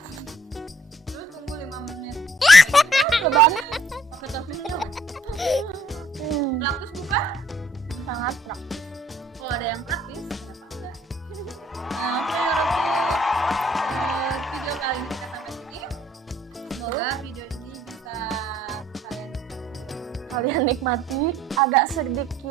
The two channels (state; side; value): normal; both; correlation 0.60